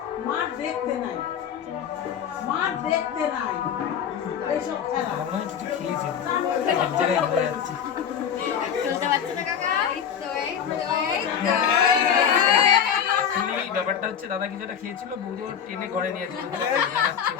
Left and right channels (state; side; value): quieter; right; 8.2 dB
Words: মার দেখতে নাই এইসব খেলা মনে হয় কিছু খেয়েছে এক জায়গায় হয়ে যাচ্ছে চলতে পারছে না কাকা এই ব্যাপারটা হচ্ছে দাদা কিছু একটা খেয়েছিল বৌদি ওর টেনে ঘরে নিয়ে যাচ্ছে